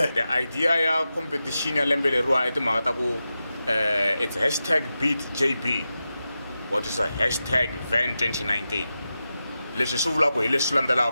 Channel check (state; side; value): inverted; both; correlation -0.91